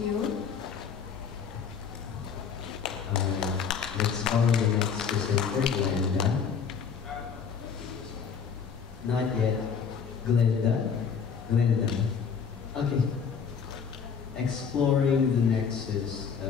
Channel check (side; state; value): right; quieter; 6.5 dB